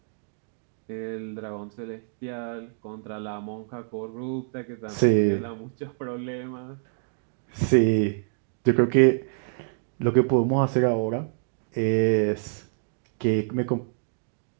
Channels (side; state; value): left; silent; digital silence